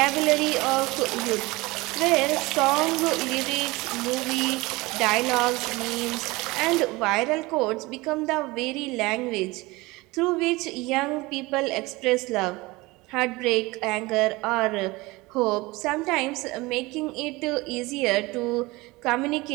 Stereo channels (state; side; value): quieter; left; 22.2 dB